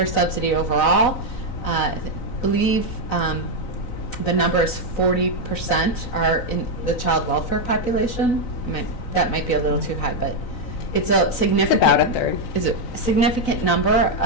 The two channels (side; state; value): right; late; 3.9 ms